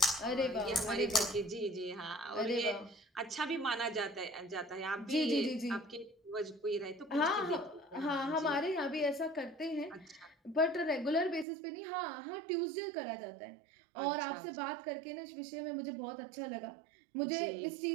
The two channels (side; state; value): left; drops out; at 11.5 s